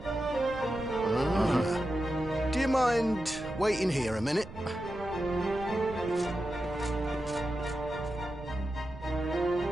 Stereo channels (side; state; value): right; noise; rumble, 15 dB below the sound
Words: Do you mind waiting here a minute?